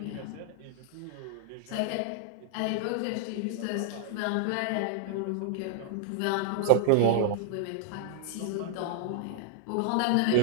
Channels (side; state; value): both; different; correlation -0.01